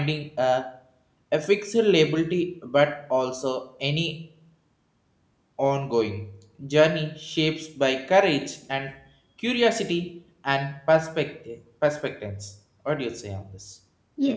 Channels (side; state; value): both; identical; correlation 1.00